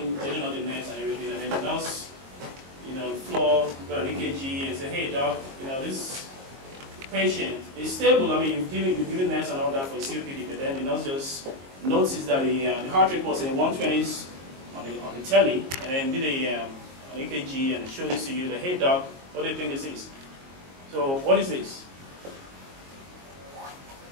they don't know the nerves and everything, and then the nurse, the floor, got an EKG and say, hey doc, this patient is stable. I mean, you've given nerves and all that for his COPD, but then the nurse just noticed that the heart rate was in the 120s on the telly, and then did an EKG and showed this to you. That, hey doc, what do you think this is? So what is this?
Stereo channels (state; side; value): late; left; 22 ms